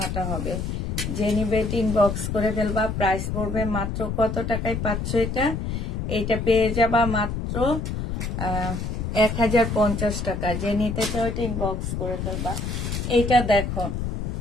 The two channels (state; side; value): noise; left; rumble, 3 dB below the sound